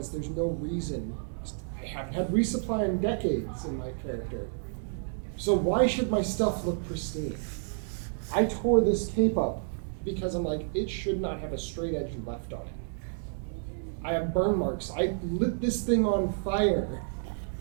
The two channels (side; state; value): left; silent; digital silence